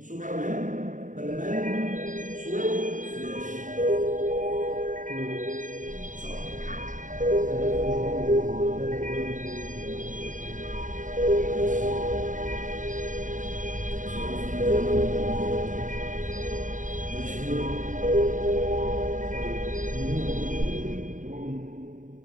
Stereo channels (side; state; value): left; late; 0.37 ms